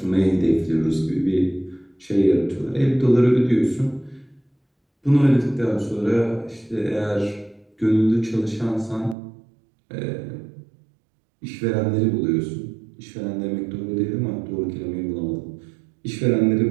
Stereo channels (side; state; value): left; drops out; at 9.2 s